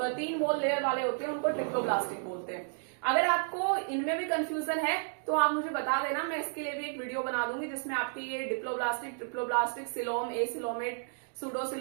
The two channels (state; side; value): silent; left; digital silence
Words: 3 वॉल लेयर वाले होते हैं उनको ट्रिप्लोब्लास्टिक बोलते हैं। अगर आपको इनमें भी कंफ्यूजन है तो आप मुझे बता देना, मैं इसके लिए भी एक वीडियो बना दूंगी जिसमें आपकी ये diploblastic, triploblastic, coelom, acoelomate,